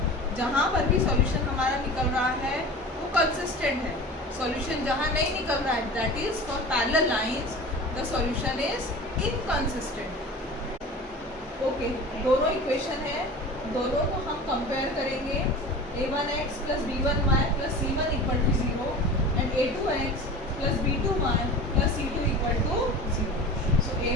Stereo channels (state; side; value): normal; both; correlation 0.36